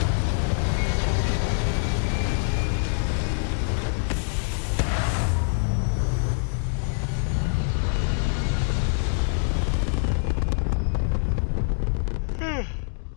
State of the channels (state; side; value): silent; right; digital silence